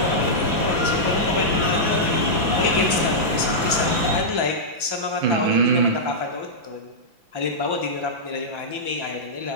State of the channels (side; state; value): left; late; 5.9 ms